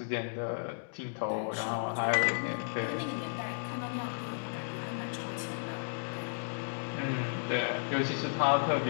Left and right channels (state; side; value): silent; right; digital silence